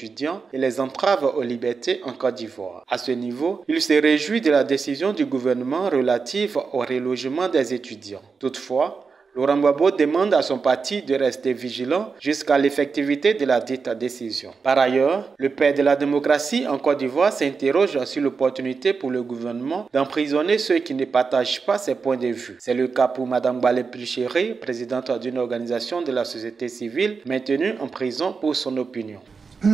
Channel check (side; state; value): left; quieter; 5.1 dB